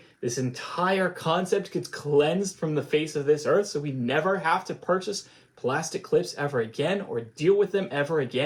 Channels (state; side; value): identical; both; correlation 1.00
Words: this entire concept gets cleansed from the face of this earth so we never have to purchase plastic clips ever again or deal with them ever